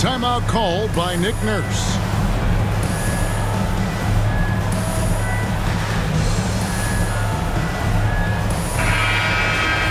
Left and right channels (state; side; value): identical; both; correlation 1.00